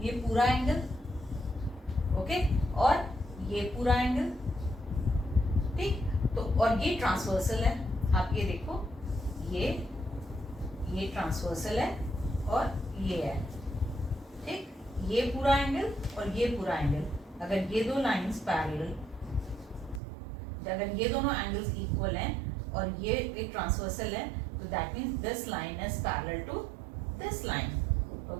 ये पूरा एंगल. ओके, और ये पूरा एंगल. ठीक, तो और ये ट्रांसवर्सल है. आप ये देखो, ये ट्रांसवर्सल है और ये है. ठीक, ये पूरा एंगल और ये पूरा एंगल. अगर ये दो लाइंस पैरेलल, अगर ये दोनों एंगल्स इक्वल हैं और ये एक ट्रांसवर्सल है, तो that means this line is parallel to this line.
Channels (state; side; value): drops out; left; at 20.0 s